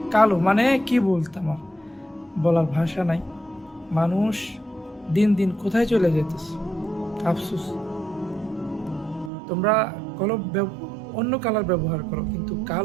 কালো, মানে কি বলতাম আর, বলার ভাষা নাই। মানুষ দিন দিন কোথায় চলে যেতেছে, আফসোস। তোমরা অন্য কালার ব্যবহার করো, কিন্তু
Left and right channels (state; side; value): drops out; left; at 9.3 s